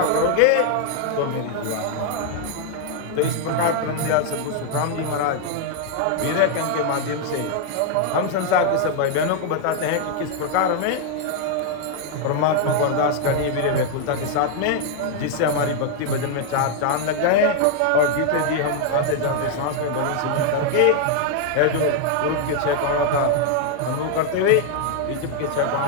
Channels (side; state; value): both; different; correlation 0.00